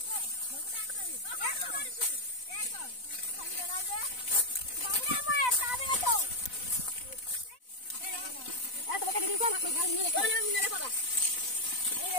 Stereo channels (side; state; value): right; late; 4.0 ms